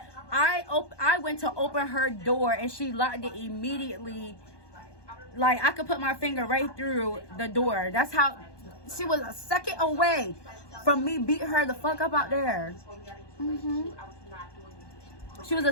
I went to open her door and she locked it immediately. Like, I could put my finger right through the door. That's how she was a second away from me beating her the fuck up out there. She was a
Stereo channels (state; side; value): late; right; 1.2 ms